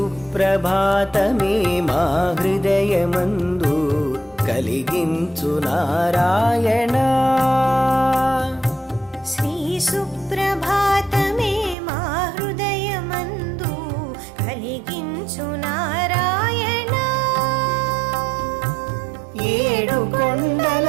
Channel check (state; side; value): drops out; left; at 11.8 s